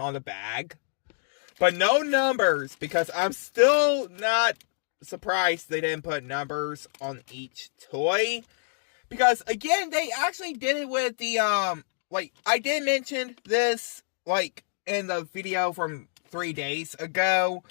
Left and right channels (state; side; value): silent; right; digital silence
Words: the bag, but no numbers, because I'm still not surprised they didn't put numbers on each toy. Because, again, they actually did it with the, I did mention this, in the video from 3 days ago,